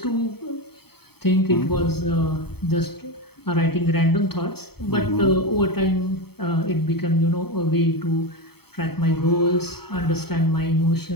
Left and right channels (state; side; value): late; right; 0.96 ms